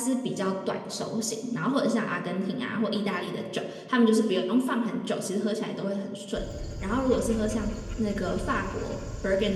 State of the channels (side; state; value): both; identical; correlation 1.00